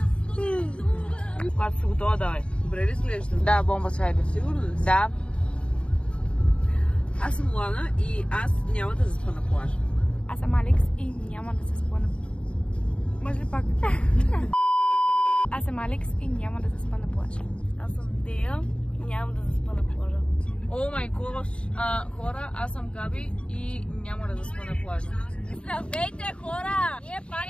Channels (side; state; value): right; late; 0.057 ms